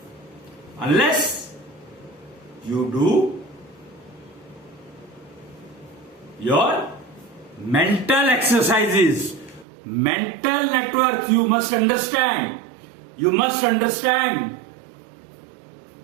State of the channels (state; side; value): drops out; left; at 9.7 s